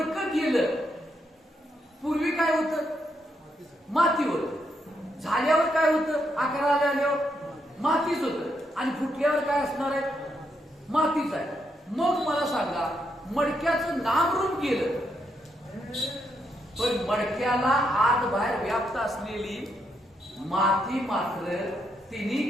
गेलं, पूर्वी काय होतं, माती होत, झाल्यावर काय होतं, आकाराला आल्यावर मातीच होत आणि फुटल्यावर काय असणार आहे, मातीच आहे. मग मला सांगा, मडक्याचं नामरूप गेलं पण मडक्याला आत बाहेर व्याप्त असलेली माती मात्र तिन्ही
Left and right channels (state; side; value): normal; both; correlation 0.79